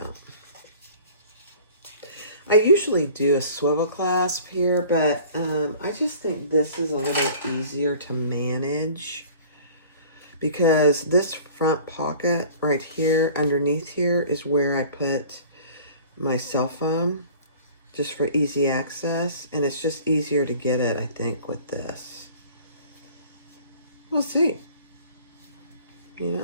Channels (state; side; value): inverted; both; correlation -0.47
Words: I usually do a swivel clasp here, but I just think this is a little easier to manage because this front pocket right here underneath here is where I put my cell phone just for easy access, and it's just easier to get it, I think, with this. We'll see, you